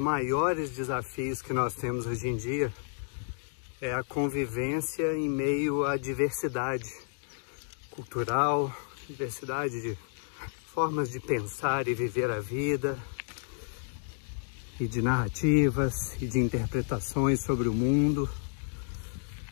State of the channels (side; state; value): right; silent; 57 dB below the other